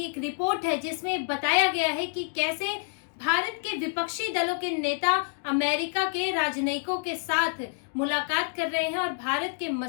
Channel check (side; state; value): right; silent; 60 dB below the other